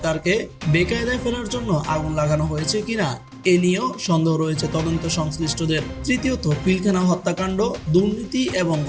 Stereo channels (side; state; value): both; identical; correlation 1.00